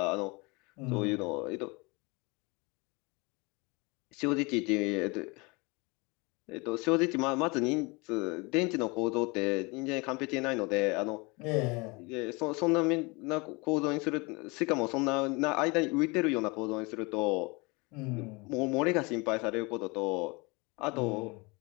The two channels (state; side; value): quieter; right; 27.2 dB